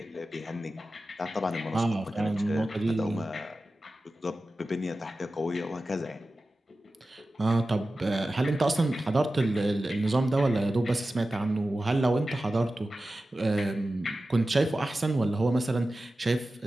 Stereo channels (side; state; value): both; normal; correlation 0.94